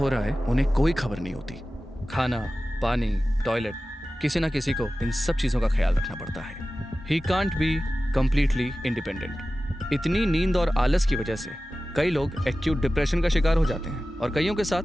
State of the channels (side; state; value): both; normal; correlation 0.95